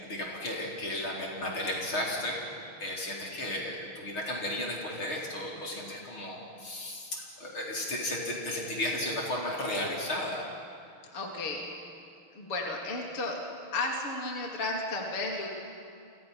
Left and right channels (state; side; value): late; right; 6.4 ms